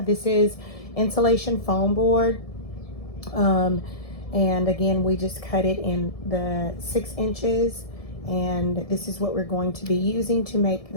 is insulation foam board, and again, we just cut it in the 6 inches, and this is what we're going to be using to make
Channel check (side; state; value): right; late; 1.7 ms